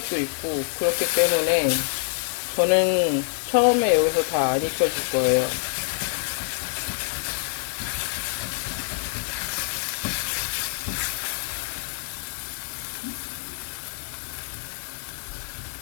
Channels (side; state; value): right; silent; 61 dB below the other